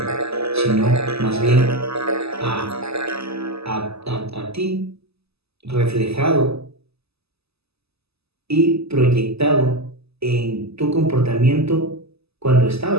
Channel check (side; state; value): left; late; 0.79 ms